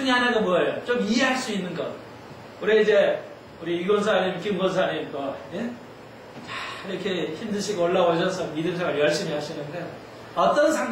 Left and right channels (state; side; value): identical; both; correlation 1.00